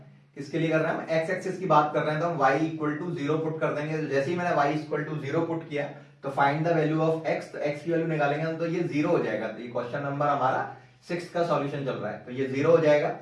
किसके लिए कर रहा है, एक्स एक्सिस की बात कर रहे हैं। तो हम y इक्वल टू 0 पुट कर देंगे। तो जैसे ही मैंने y इक्वल टू 0 पुट किया तो find the value of x, तो x की वैल्यू निकालेंगे तो ये 0 हो जाएगा। तो ये क्वेश्चन नंबर हमारा 6 का सॉल्यूशन चल रहा है, तो ये 0 हो जाएगा।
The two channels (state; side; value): identical; both; correlation 1.00